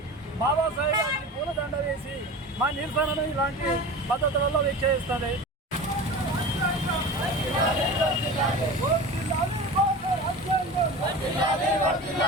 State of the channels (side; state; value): both; normal; correlation 0.33